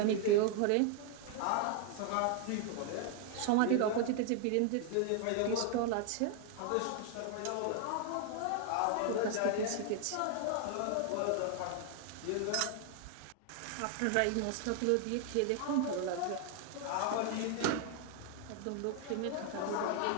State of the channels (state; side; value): different; both; correlation 0.00